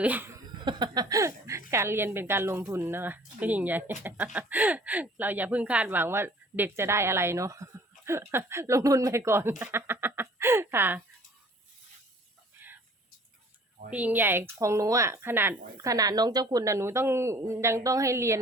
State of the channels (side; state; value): both; normal; correlation 0.52